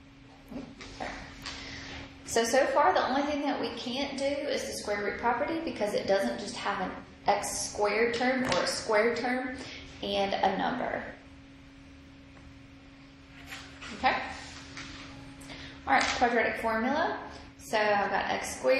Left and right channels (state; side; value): identical; both; correlation 1.00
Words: So far the only thing that we can't do is the square root property because it doesn't just have an x squared term or a square term and a number. Okay? Alright, quadratic formula. So I've got x